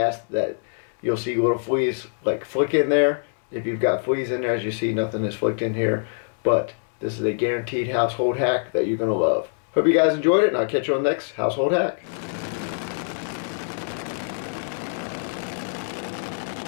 that you'll see little fleas like flick in there. If you've got fleas in there, as you see, nothing is flicked in here. But this is a guaranteed household hack that you're going to love. Hope you guys enjoyed it, and I'll catch you on the next household hack.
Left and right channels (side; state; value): right; silent; 61 dB below the other